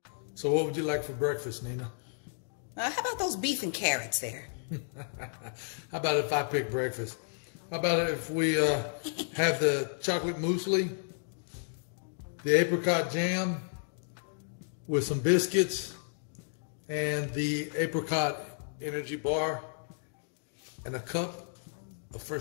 So what would you like for breakfast, Nina? How about those beef and carrots there? How about if I pick breakfast? How about if we have the chocolate muesli, the apricot jam with some biscuits, and the apricot energy bar, and a cup of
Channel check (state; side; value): silent; right; digital silence